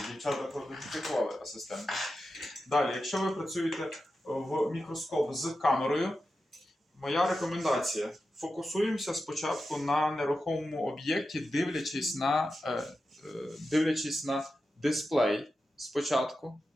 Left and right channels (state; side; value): normal; both; correlation 0.91